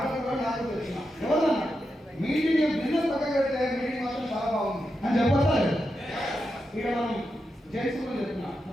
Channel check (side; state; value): both; normal; correlation 0.87